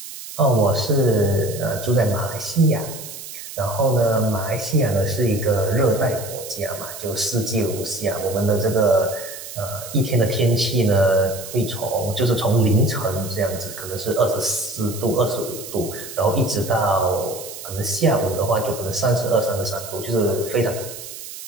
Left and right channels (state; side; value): noise; right; hiss, 12 dB below the sound